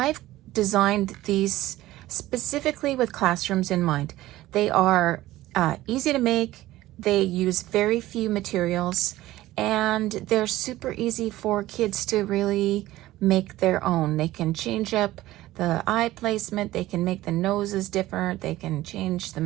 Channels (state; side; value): quieter; left; 16.2 dB